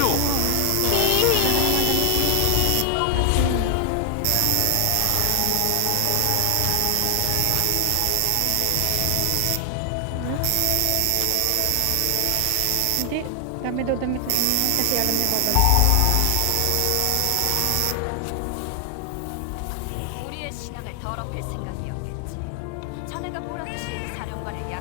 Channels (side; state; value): both; different; correlation 0.00